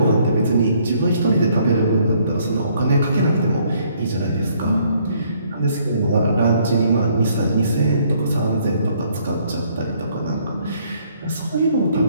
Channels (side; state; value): both; inverted; correlation -0.66